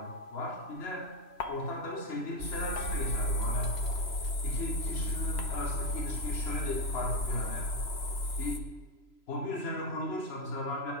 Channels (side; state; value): right; late; 3.0 ms